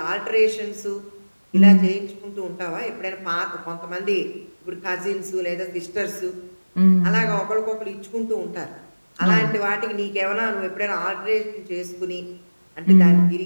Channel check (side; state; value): both; inverted; correlation -1.00